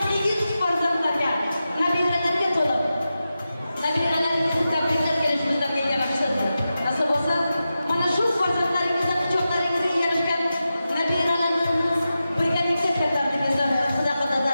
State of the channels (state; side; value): inverted; both; correlation -0.92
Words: ilginç farzatlarga, nabirelerge tolup. Nabirelerinizi tebrikler gelişimizden yaramışsınız. Nasıl olsa bana şu farzatlarınızdan kucaklarınızı yarışken nabireleriniz birlikte katardığınızdan sadakada